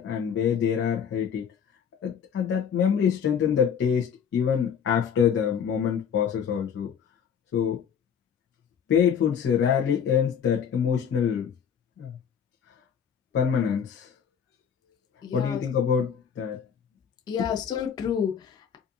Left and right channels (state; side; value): quieter; right; 7.7 dB